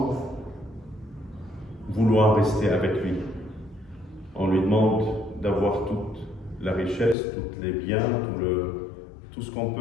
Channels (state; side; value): drops out; right; at 7.2 s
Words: vouloir rester avec lui. On lui demande d'avoir toute la richesse, tous les biens, tout ce qu'on